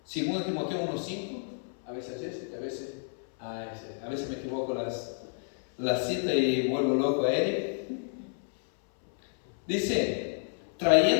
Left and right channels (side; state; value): right; silent; 58 dB below the other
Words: 2 Timoteo 1:5, a veces a veces me equivoco la cita y vuelvo loco a Eric. Dice,